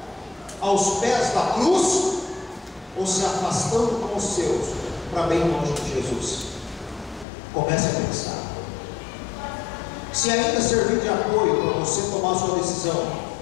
aos pés da cruz, ou se afastando com os seus para bem longe de Jesus? Comece a pensar. Se ainda servir de apoio para você tomar sua decisão,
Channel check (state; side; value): drops out; right; at 7.2 s